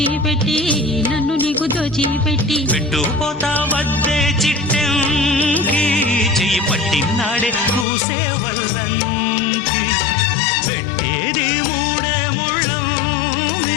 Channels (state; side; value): drops out; right; at 7.9 s